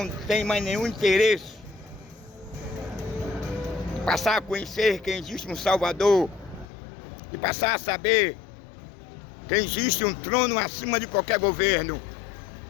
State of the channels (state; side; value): drops out; right; at 6.7 s